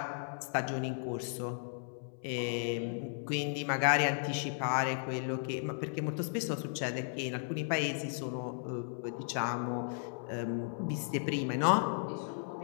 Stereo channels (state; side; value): silent; right; 54 dB below the other